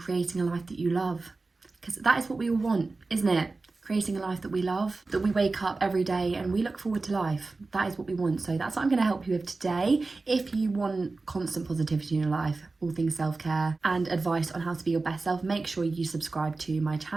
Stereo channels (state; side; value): quieter; left; 3.6 dB